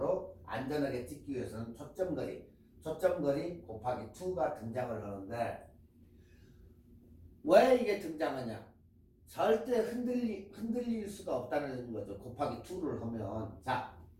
안전하게 찍기 위해서는 초점거리 곱하기 2가 등장을 하는데 왜 이게 등장하냐? 절대 흔들릴 수가 없다는 거죠. 곱하기 2를 하면. 자,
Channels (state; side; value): identical; both; correlation 1.00